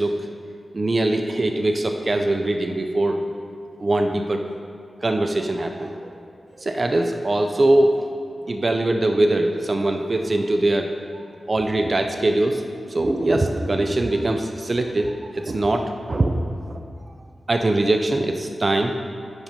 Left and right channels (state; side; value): normal; both; correlation 0.97